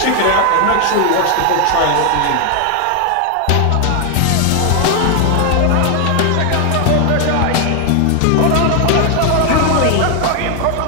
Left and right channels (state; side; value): different; both; correlation 0.00